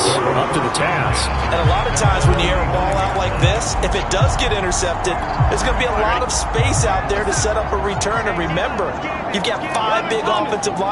up to the task. And a lot of times when you air a ball out like this, if it does get intercepted, there's going to be a lot of space out there to set up a return. And remember, you've got 5 big offensive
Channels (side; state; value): both; identical; correlation 1.00